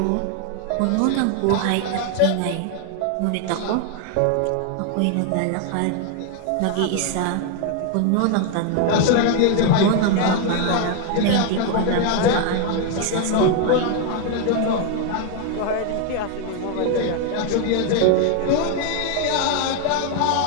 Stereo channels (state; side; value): different; both; correlation 0.01